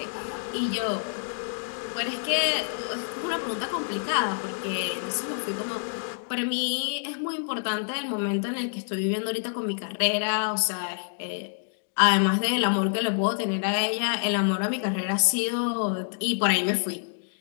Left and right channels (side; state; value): right; silent; digital silence